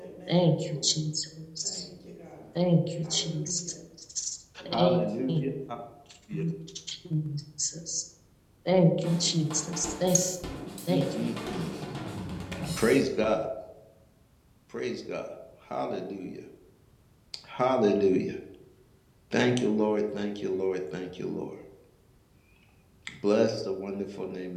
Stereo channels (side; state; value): both; identical; correlation 1.00